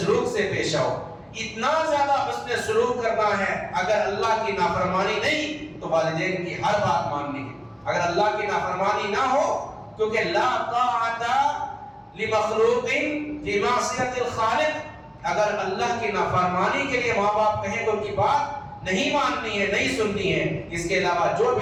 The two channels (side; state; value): both; identical; correlation 1.00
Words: سے پیش آؤ. اتنا زیادہ حسن سلوک کرنا ہے، اگر اللہ کی نافرمانی نہیں تو والدین کی ہر بات ماننی ہے. اگر اللہ کی نافرمانی نہ ہو، کیونکہ لا طاعت لمخلوق فی معصیت الخالق، اگر اللہ کی نافرمانی کے لیے ماں باپ کہیں تو ان کی بات نہیں ماننی ہے، نہیں سننی ہے. اس کے علاوہ جو